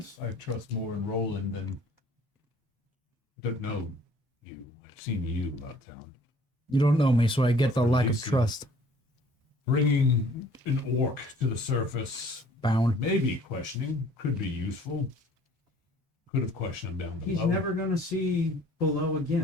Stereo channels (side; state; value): both; normal; correlation 0.54